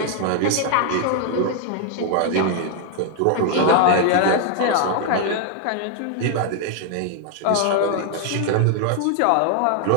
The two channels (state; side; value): different; both; correlation 0.00